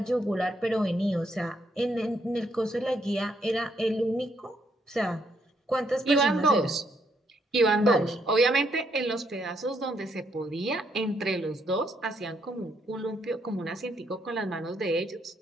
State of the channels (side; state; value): both; normal; correlation 0.74